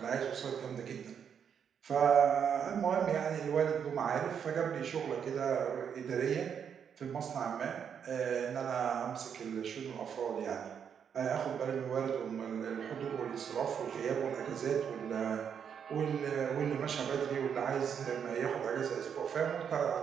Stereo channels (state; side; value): quieter; left; 7.7 dB